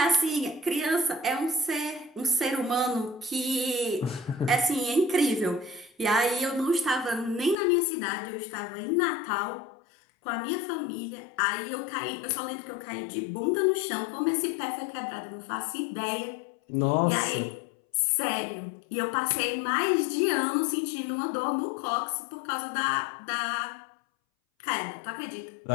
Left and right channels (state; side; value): drops out; right; at 7.6 s